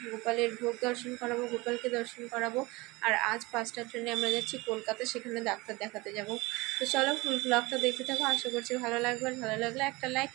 গোপালের ভোগ দর্শন করাবো, গোপালকে দর্শন করাবো। আর আজ 5টার জন্য আমরা যাচ্ছি কলকাতা, সেখানে ডাক্তার দেখাতে যাব। তো চলো ফুল ব্লগটা দেখতে থাকো, আশা করছি ভালো লাগবে। ভালো লাগলে একটা লাইক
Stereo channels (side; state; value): left; quieter; 22.9 dB